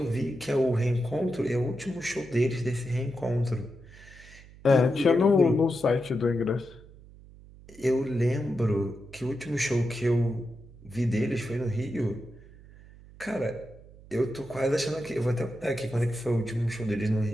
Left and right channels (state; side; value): noise; right; hum, 21 dB below the sound